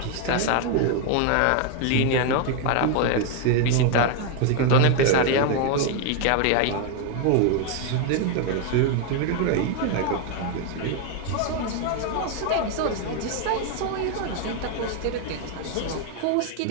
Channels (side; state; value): both; different; correlation 0.01